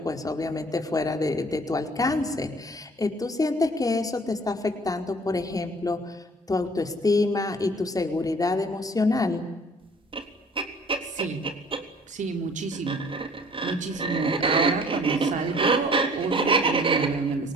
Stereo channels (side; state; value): both; normal; correlation 0.52